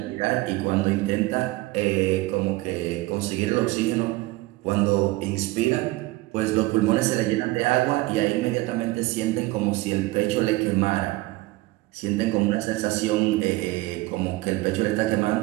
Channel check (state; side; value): quieter; left; 20.0 dB